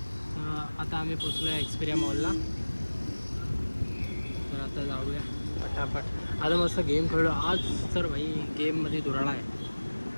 आता आम्ही पोचलो आहे एक्सपिरिया मॉलला. तर आता जाऊया पटापट. आता मस्त गेम खेळलो आज. तर भाई गेममध्ये धुराळा आहे.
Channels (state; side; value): inverted; both; correlation -1.00